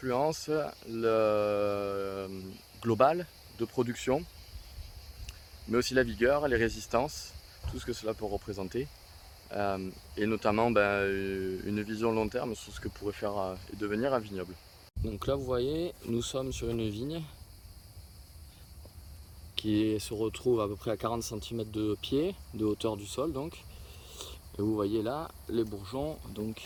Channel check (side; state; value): both; identical; correlation 1.00